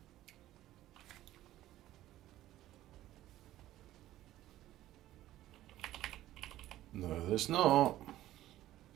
No, there's not.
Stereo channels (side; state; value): left; quieter; 14.5 dB